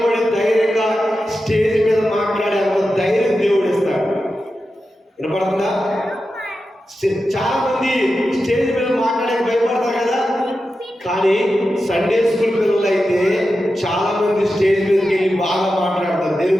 ధైర్యంగా స్టేజ్ మీద మాట్లాడే ధైర్యం దేవుడు ఇస్తాడు. వినపడుతుందా? చాలా మంది స్టేజ్ మీద మాట్లాడడానికి భయపడతారు కదా. కానీ సండే స్కూల్ పిల్లలు అయితే చాలా మంది స్టేజ్ మీదకి వెళ్ళి బాగా మాట్లాడతారు.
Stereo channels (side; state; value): both; normal; correlation 0.91